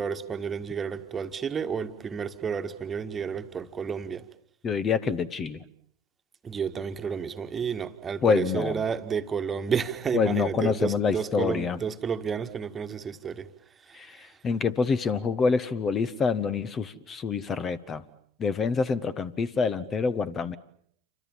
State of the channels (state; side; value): normal; both; correlation 0.66